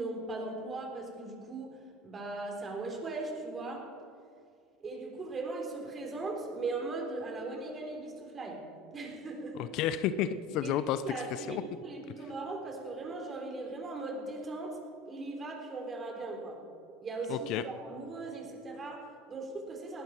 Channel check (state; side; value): normal; both; correlation 0.39